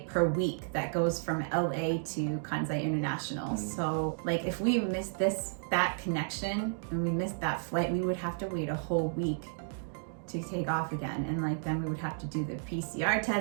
per week that goes from LA to Kansai International. So like if we missed that connection and we missed that flight, we would have to wait a whole week to take off again. And like then we would have to do the PCR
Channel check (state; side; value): silent; left; digital silence